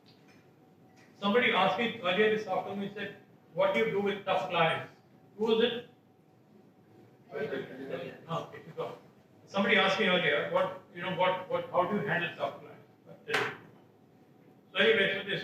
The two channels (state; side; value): identical; both; correlation 1.00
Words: Somebody asked me earlier this afternoon, he said, what do you do with tough clients? Who was it? No, if you go. Somebody asked me earlier, how do you handle tough clients? So anyway, so they